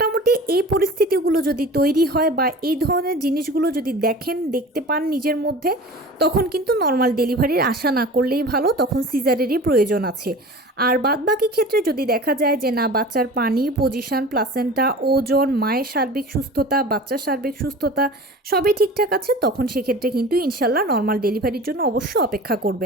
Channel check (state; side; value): normal; both; correlation 0.38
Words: এই পরিস্থিতিগুলো যদি তৈরি হয় বা এই ধরনের জিনিসগুলো যদি দেখতে পান নিজের মধ্যে, তখন কিন্তু নর্মাল ডেলিভারির আশা না করলেই ভালো, তখন সিজারেরই প্রয়োজন আছে। আর বাদবাকি ক্ষেত্রে যদি দেখা যায় যে না, বাচ্চার পানি, পজিশন, প্লাসেন্টা, ওজন, মায়ের সার্বিক সুস্থতা, বাচ্চার সার্বিক সুস্থতা সবই ঠিকঠাক আছে, তখন সেক্ষেত্রে কিন্তু ইনশাল্লাহ নর্মাল ডেলিভারির জন্য অবশ্যই অপেক্ষা